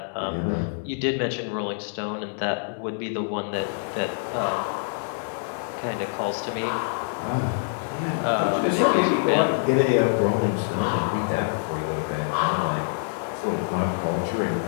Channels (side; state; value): right; silent; 61 dB below the other